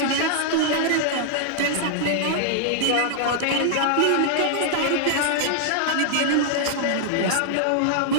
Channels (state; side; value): different; both; correlation -0.01